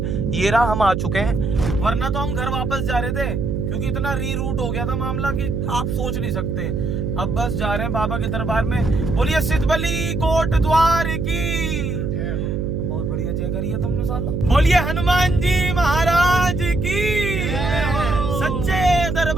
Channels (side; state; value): right; noise; hum, 1 dB below the sound